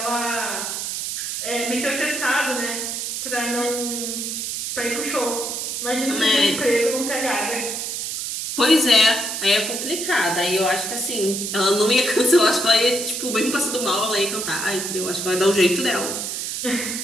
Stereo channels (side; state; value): right; noise; hiss, 4 dB below the sound